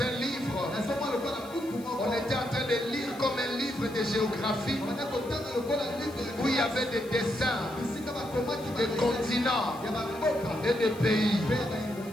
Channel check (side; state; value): left; noise; hiss, 21 dB below the sound